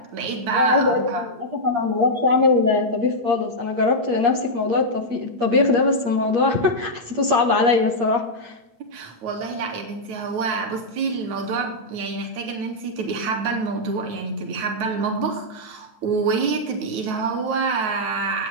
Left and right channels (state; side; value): late; left; 8.5 ms